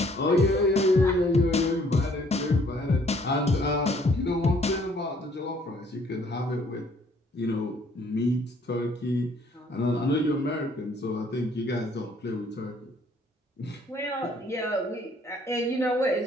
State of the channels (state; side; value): normal; both; correlation 0.62